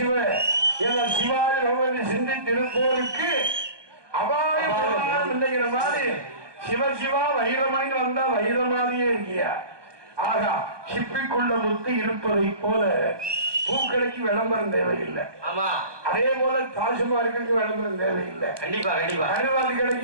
என சிவாய நோய் சிந்தித்திருப்போருக்கு அபாயம் இல்லைங்கிற மாதிரி சிவ சிவா வைரமணி வந்தா வைர மாதிரியே இருக்கியா. ஆகா, சிப்பிக்குள்ள முத்து இருப்பதை போல பூக்கடைக்கு விளம்பரம் தேவையில்லை. அதே போல தாஜ்மஹாலுக்கு விளம்பரம் தேவையில்லை. கண்டிப்பா கண்டிப்பா கருவாதி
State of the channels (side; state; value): left; late; 1.2 ms